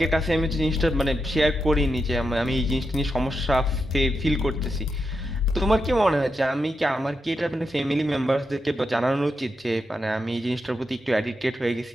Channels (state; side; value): normal; both; correlation 0.86